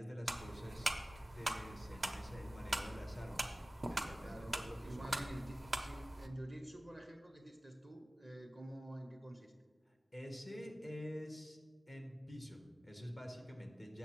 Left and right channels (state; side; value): normal; both; correlation 0.97